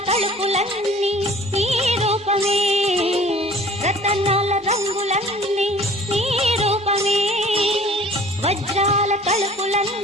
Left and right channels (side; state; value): both; normal; correlation 0.49